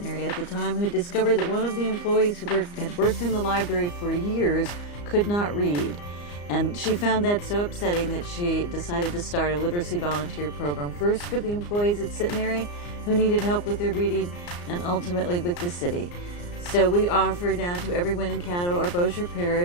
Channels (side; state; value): right; late; 34 ms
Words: at the time, who discovered that one of the employees who had worked in the library for years could not read. And she found that so upsetting that she decided to start a literacy volunteer program, first for the employees at Centenary who needed help with their reading, and ultimately with the city. So we offer now to everyone in Caddo or Bossier